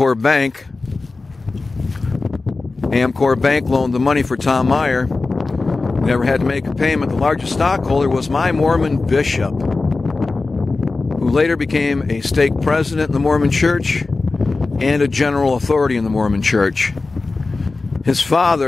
Bank loaned the money for Tom Meyer, never had to make a payment. The largest stockholder was my Mormon bishop, who later became a stake president in the Mormon Church and a general authority in the Mormon Church. His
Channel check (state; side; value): quieter; right; 3.7 dB